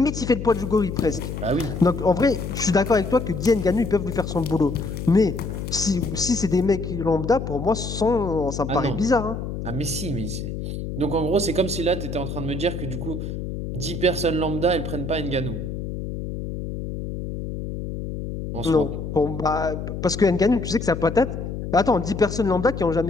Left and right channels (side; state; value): left; noise; hum, 6 dB below the sound